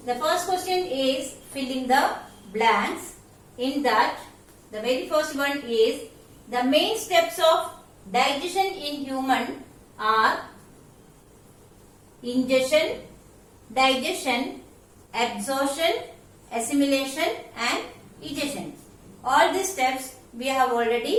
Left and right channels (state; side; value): identical; both; correlation 1.00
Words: The first question is fill in the blanks. In that, the very first one is the main steps of digestion in human are ingestion, digestion, absorption, assimilation and egestion. All these steps we have